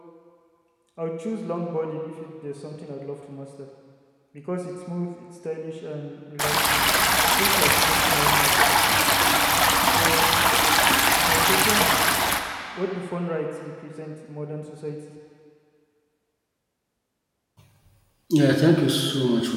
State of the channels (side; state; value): both; identical; correlation 1.00